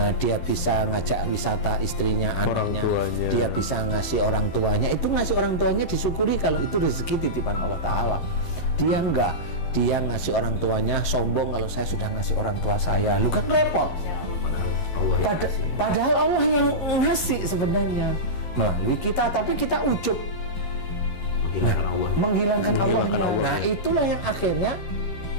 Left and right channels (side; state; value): right; late; 12 ms